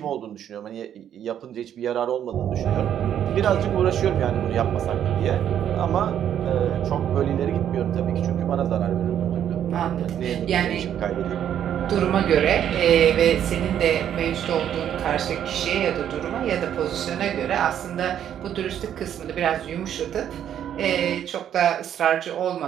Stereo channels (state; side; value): quieter; left; 9.9 dB